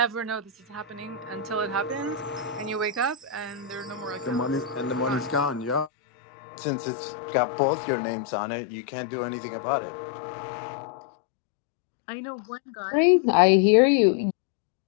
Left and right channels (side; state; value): right; drops out; at 5.9 s